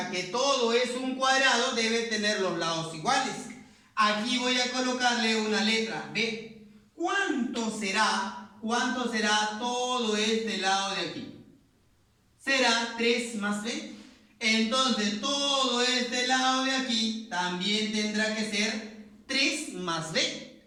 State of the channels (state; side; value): identical; both; correlation 1.00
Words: que todo es un cuadrado, debe tener los lados iguales. Aquí voy a colocarle una letra B. ¿Cuánto será todo este lado de aquí? Será 3 más B. Entonces todo este lado de aquí también tendrá que ser 3 más B.